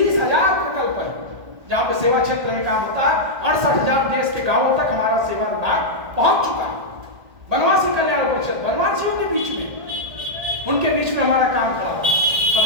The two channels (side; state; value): left; late; 1.2 ms